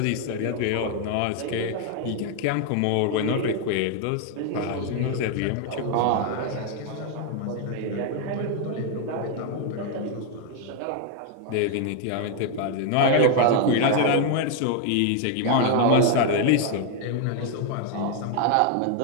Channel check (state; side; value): different; both; correlation 0.00